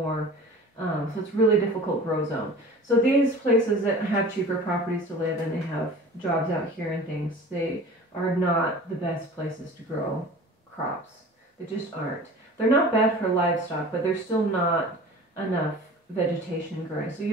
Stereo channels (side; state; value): both; normal; correlation 0.40